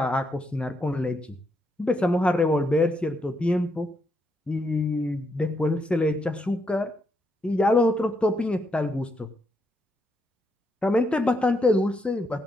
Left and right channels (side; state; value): both; normal; correlation 0.79